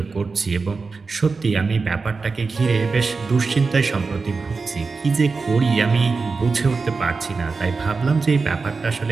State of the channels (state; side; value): quieter; left; 4.4 dB